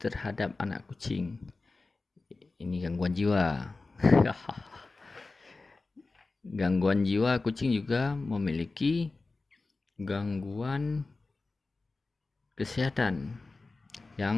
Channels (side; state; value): right; quieter; 3.6 dB